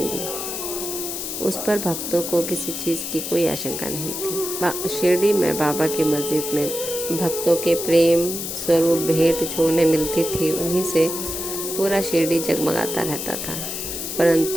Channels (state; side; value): noise; left; hiss, 5 dB below the sound